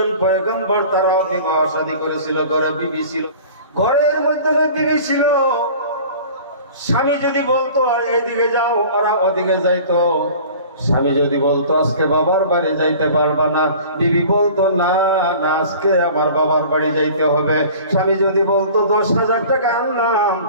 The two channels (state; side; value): inverted; both; correlation -0.44